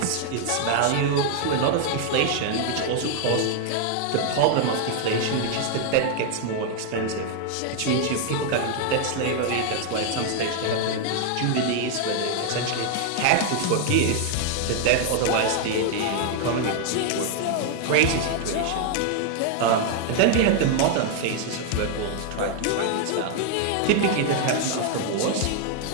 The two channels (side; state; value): both; different; correlation 0.00